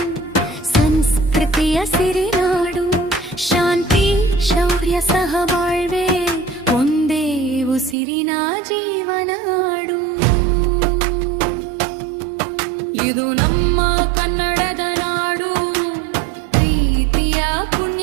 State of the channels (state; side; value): drops out; left; at 8.0 s